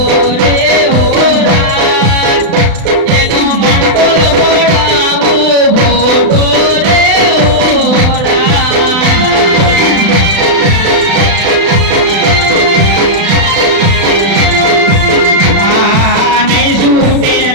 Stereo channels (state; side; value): late; left; 35 ms